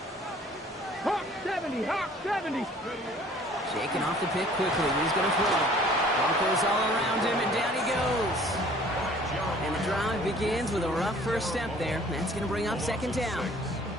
Hawk 70, Hawk 70. Shaking off the pick quickly. He's going to throw. Broncos all around him, and down he goes. And the drive begins with a rough first step there. That's going to bring up second down.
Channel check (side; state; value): both; normal; correlation 0.53